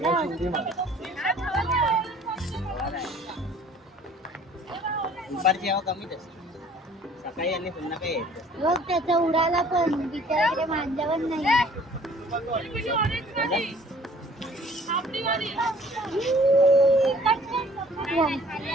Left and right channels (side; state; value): both; normal; correlation 0.53